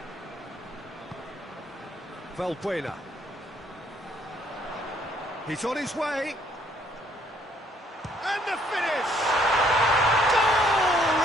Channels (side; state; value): both; normal; correlation 0.65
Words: Valbuena. He's on his way. And the finish! Goal!